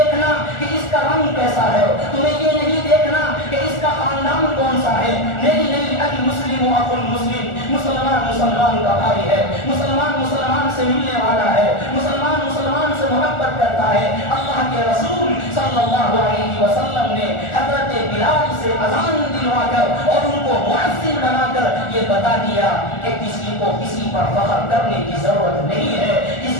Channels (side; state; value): right; late; 1.4 ms